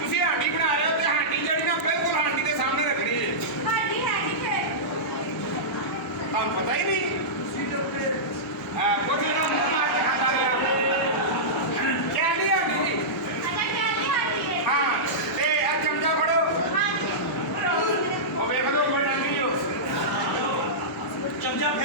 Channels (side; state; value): both; normal; correlation -0.14